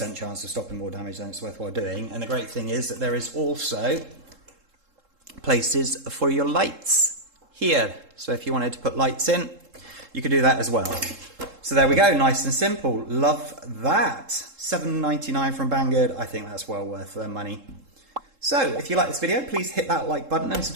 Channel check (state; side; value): late; left; 3.7 ms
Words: chance of stopping more damage, then it's worthwhile doing. And the great thing is that there is also places for your lights here. So if you wanted to put lights in, you could do that as well. So there we go, nice and simple. Love that. $7.99 from Banggood. I think that's well worth their money. So, if you like this video, please hit that like button and